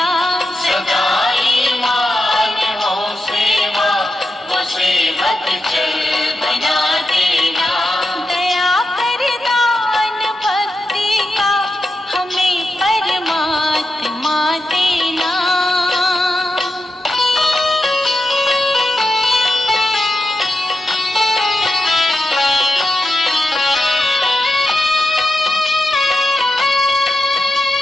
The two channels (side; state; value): both; normal; correlation 0.88